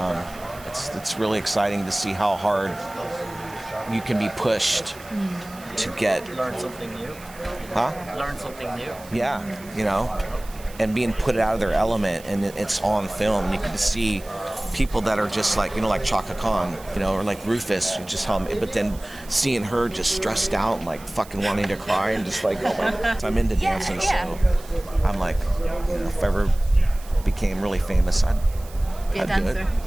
It's really exciting to see how hard you can be pushed to learn something new. Learn something new. Yeah, you know, and being put out of their element, and it's on film. You can see people that are just like, you know, like Chaka Khan, you know, or like Rufus, just how, but then seeing her just stressed out and like fucking wanting to cry and just like, oh my God. I'm into dancing, so I'm like, you know, if I ever became really famous, I'd dancer. do it.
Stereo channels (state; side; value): noise; right; hiss, 20 dB below the sound